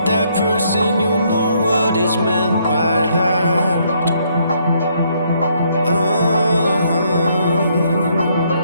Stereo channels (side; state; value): both; inverted; correlation -0.70